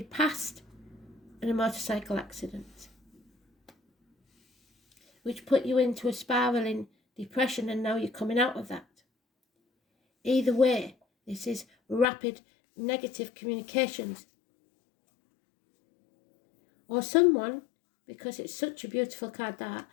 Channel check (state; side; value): drops out; right; at 12.1 s